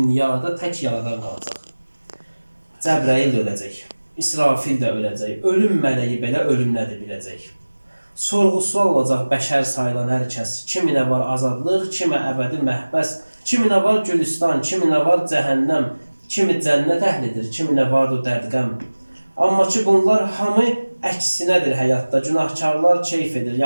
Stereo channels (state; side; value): inverted; both; correlation -1.00